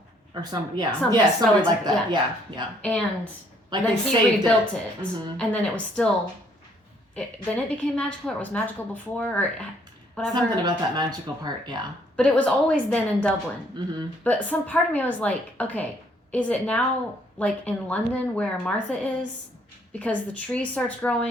Or somebody relative, like that. Yeah. And then they he rebuilt it. Mm-hmm. And then it was still. Then it became magical, or it was magical before, or whatever. Something about that magical part, yeah. But it was always then in Dublin. Mm-hmm. But some part of me was like, okay, is it now in London where Martha is? Because the tree starts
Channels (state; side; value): normal; both; correlation 0.65